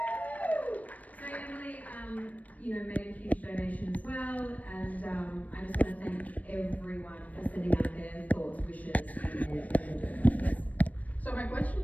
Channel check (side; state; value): right; late; 0.071 ms